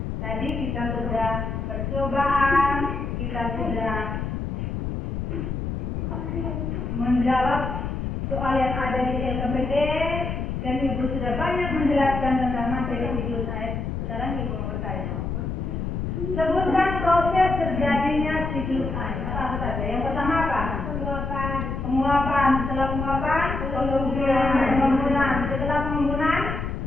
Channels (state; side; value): noise; left; rumble, 3 dB below the sound